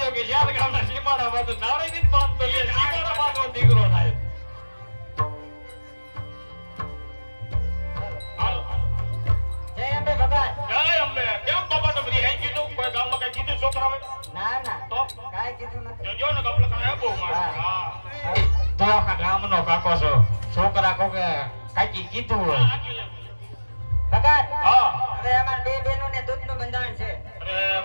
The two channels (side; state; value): both; inverted; correlation -1.00